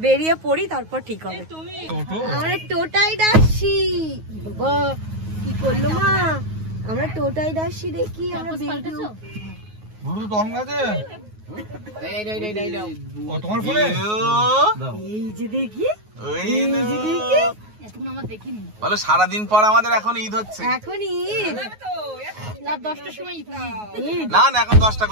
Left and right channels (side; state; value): left; late; 9.4 ms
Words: বেরিয়ে পড়ি তারপর ঠিক হবে। আমরা টোটাই ডাকছি, বাবা কি করলো মা, আমরা টোটাই ডাকছি, দেখি আমরা বেরোবো। ব্লুটুথ অন আছে? ও তোমার ফোনে? এই যে দেখি, ওই এই যে দেখি, এতক্ষণ আমার দেখিনি। বলো সারাদিন পর আমাদের এখন ঈদ হচ্ছে। এখন ঈদ, রাত 10টার সময় ঈদ। না না এখন 10টা